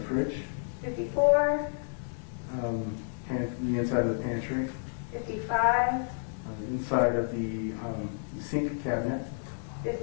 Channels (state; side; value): silent; right; digital silence